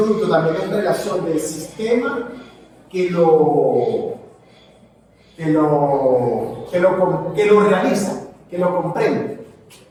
también es relación del sistema que lo realiza, que lo comprende.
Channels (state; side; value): identical; both; correlation 1.00